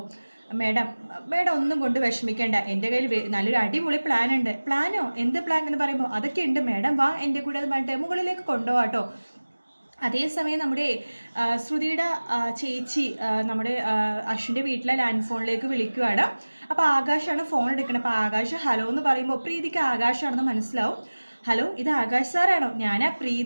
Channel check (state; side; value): inverted; both; correlation -1.00